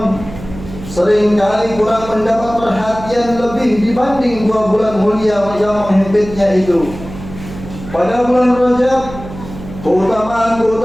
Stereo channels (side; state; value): right; noise; hum, 13 dB below the sound